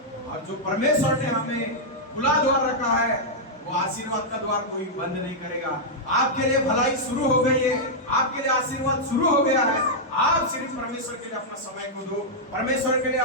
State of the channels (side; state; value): both; normal; correlation -0.06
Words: और जो परमेश्वर ने हमें खुला द्वार रखा है, वो आशीर्वाद का द्वार कोई बंद नहीं करेगा। आपके लिए भलाई शुरू हो गई है, आपके लिए आशीर्वाद शुरू हो गया है, आप सिर्फ परमेश्वर के लिए अपना समय को दो, परमेश्वर के लिए